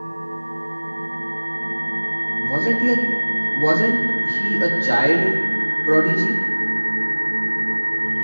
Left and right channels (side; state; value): both; inverted; correlation -1.00